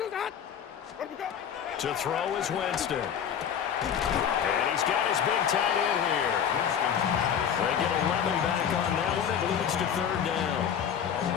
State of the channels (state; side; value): quieter; right; 8.4 dB